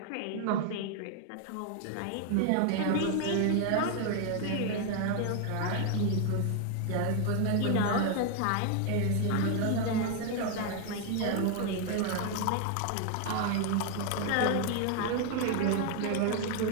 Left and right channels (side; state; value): both; different; correlation 0.00